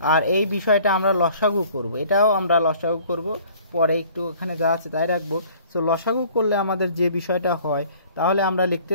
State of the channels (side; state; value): both; inverted; correlation -0.53